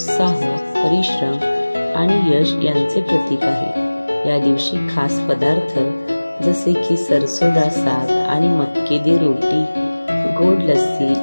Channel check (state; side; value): inverted; both; correlation -1.00